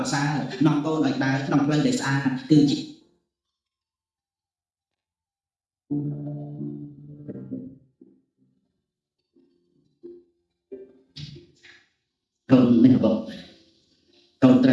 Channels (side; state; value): both; identical; correlation 1.00